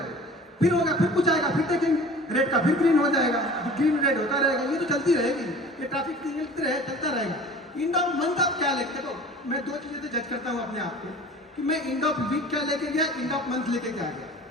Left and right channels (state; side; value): normal; both; correlation 0.42